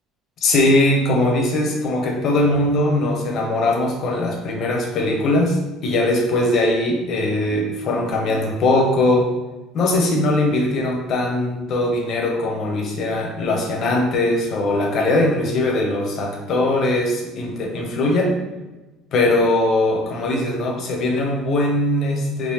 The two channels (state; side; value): normal; both; correlation 0.47